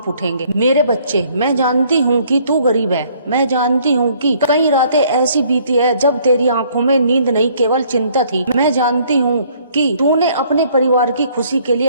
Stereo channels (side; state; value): both; inverted; correlation -0.62